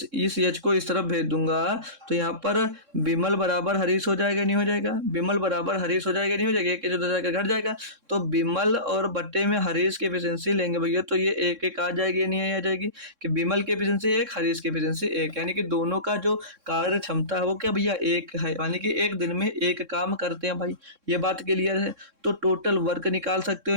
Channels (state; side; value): late; left; 3.6 ms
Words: एच को इस तरफ भेज दूंगा तो यहाँ पर विमल बराबर हरीश हो जाएगा नहीं हो जाएगा, विमल बराबर हरीश हो जाएगा नहीं हो जाएगा, एक जो जाएगा घट जाएगा। तो विमल और बट्टे में हरीश की एफिशिएंसी लेंगे भैया, तो ये एक एक आ जाएगी नहीं आ जाएगी, कि विमल की एफिशिएंसी 1, हरीश की एफिशिएंसी 1, यानी कि दोनों का जो कार्य क्षमता है वो क्या भैया 1 है, यानी कि एक दिन में 1 काम करते हैं भाई। ये बात क्लियर है। तो टोटल वर्क निकाल सकते हो